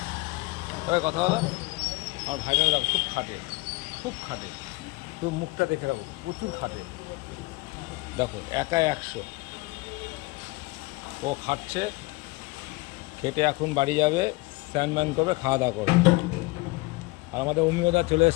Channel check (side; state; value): right; quieter; 23.7 dB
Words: তবে কথা বলো, আমার ভাইটা দেখো খুব খাটে, খুব খাটে। তো মুখটা দেখে রাখো, প্রচুর খাটে। দেখো একাই 100। ও খাটছে, খেটে এখন বাড়ি যাবে, স্নান ম্যান করবে, খাওয়া দাওয়া করবে। আর আমাদের অমিয়দা চলে